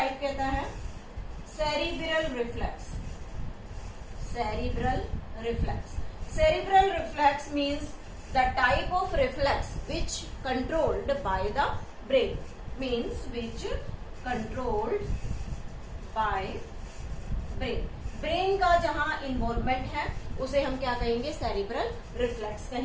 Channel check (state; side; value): identical; both; correlation 1.00